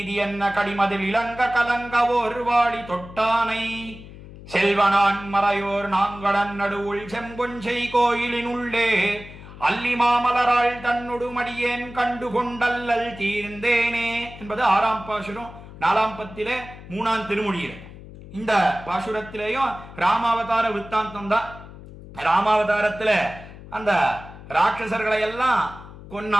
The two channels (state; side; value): noise; left; hum, 16 dB below the sound